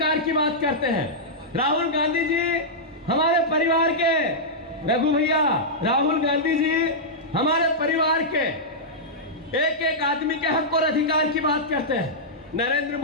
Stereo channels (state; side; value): normal; both; correlation -0.10